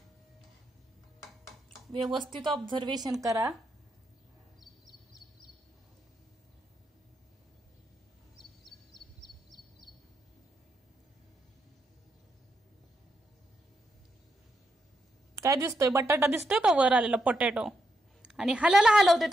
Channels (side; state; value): both; normal; correlation 0.82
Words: व्यवस्थित ऑब्झर्वेशन करा. काय दिसतोय, बटाटा दिसतोय का वर आलेला पोटॅटो, आणि हलवते,